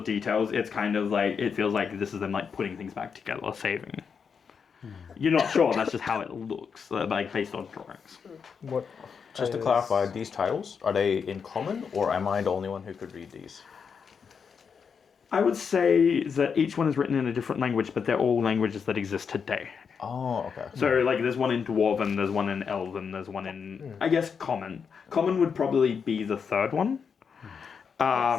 details, it's kind of like, it feels like this is them like putting things back together, saving. You're not sure, that's just how it looks, like based on drawings. What? Just to clarify, these titles, are they in common, or am I the only one who could read these? I would say that each one is written in a different language, but they're all languages that exist today. Oh, okay. So, like, there's one in Dwarven, there's one in Elven, there's one in, I guess, Common. Common would probably be the third one.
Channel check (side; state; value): right; quieter; 6.3 dB